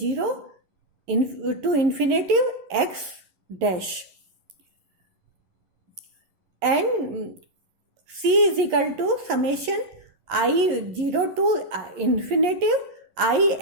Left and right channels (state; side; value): late; left; 11 ms